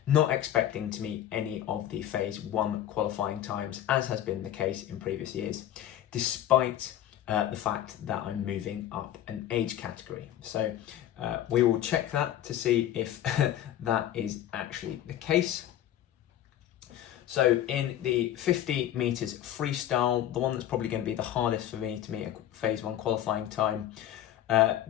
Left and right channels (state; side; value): quieter; right; 11.9 dB